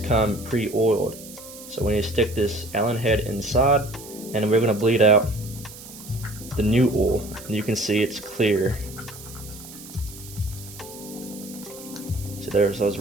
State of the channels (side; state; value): right; noise; hiss, 16 dB below the sound